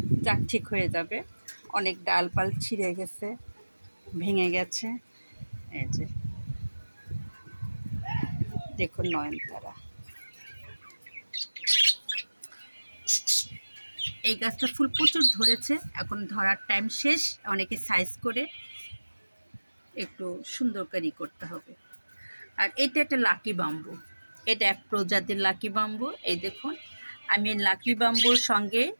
যাক ঠিক হয়ে যাবে। অনেক ডালপাল ছিঁড়ে গেছে, ভেঙে গেছে। এই যে দেখুন নয়নতারা, এই গাছটা ফুল প্রচুর ধরেছে, এখন ধরার টাইম শেষ, অনেকে সাইজ করে একটু সুন্দর করে করতে হবে। আর এটা একটা লাকি বাম্বু, এটা এক প্রজাতির লাকি বাম্বু। এই দেখুন আমি লাকি বাম্বুর সঙ্গে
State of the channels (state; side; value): inverted; both; correlation -1.00